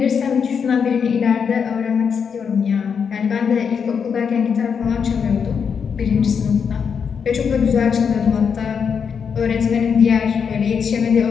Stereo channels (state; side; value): quieter; right; 6.6 dB